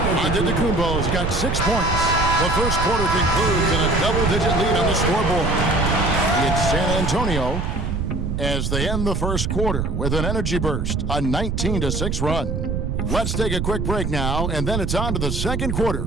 Antetokounmpo's got 6 points. The first quarter concludes in a double-digit lead on the scoreboard. It's San Antonio as they end the first quarter with an energy burst, a 19-6 run. Let's take a quick break now, and then it's on to the second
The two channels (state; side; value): noise; right; rumble, 1 dB below the sound